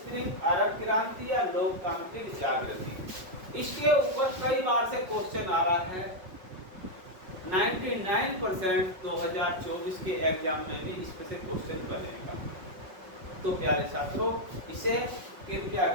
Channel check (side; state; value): left; late; 5.4 ms